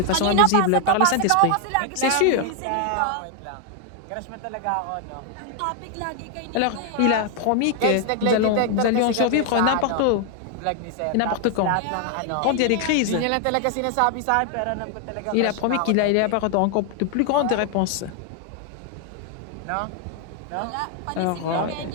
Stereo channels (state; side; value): different; both; correlation 0.00